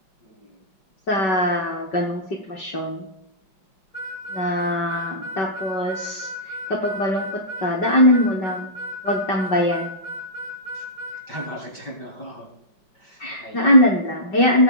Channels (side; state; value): right; late; 5.3 ms